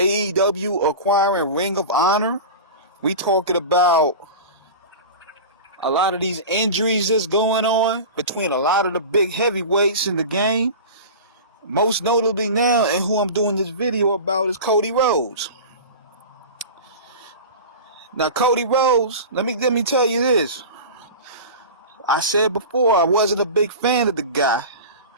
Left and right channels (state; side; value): inverted; both; correlation -0.31